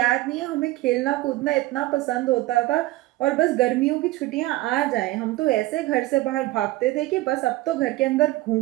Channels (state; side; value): quieter; left; 18.0 dB